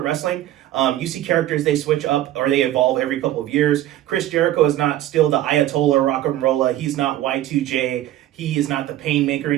wrestling, you see characters, they switch up or they evolve every couple of years. Chris Jericho is not still the Ayatollah Rock and Rolla. He's not Y2J. He is not the Painmaker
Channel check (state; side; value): quieter; left; 13.7 dB